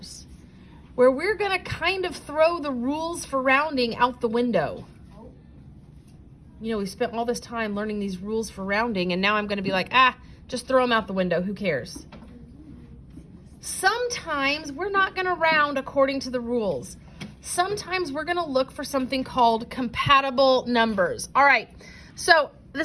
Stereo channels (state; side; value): identical; both; correlation 1.00